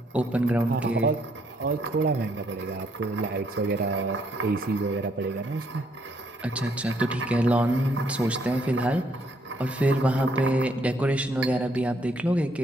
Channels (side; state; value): both; normal; correlation 0.70